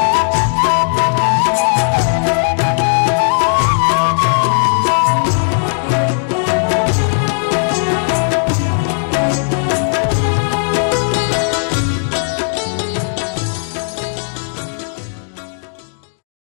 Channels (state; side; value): silent; right; digital silence